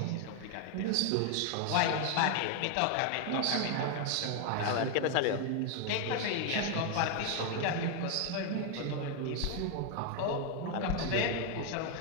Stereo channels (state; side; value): different; both; correlation 0.01